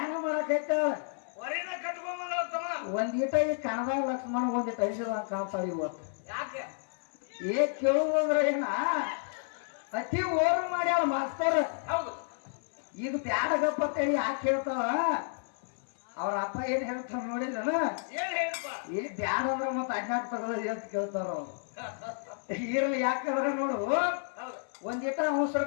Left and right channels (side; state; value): right; silent; 57 dB below the other